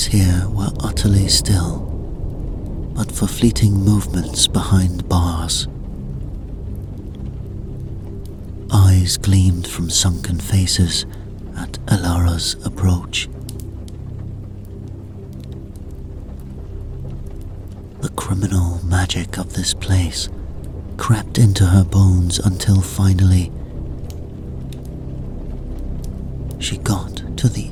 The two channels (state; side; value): identical; both; correlation 1.00